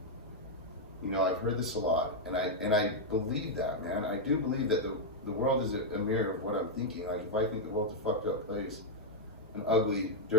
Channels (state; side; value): normal; both; correlation -0.01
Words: You know, I've heard this a lot, and I believe that, man. I do believe that the world is a mirror of what I'm thinking. Like, if I think the world's a fucked up place, an ugly,